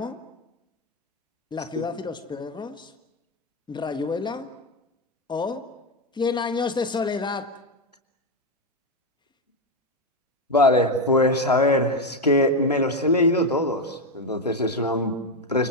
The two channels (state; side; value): normal; both; correlation 0.09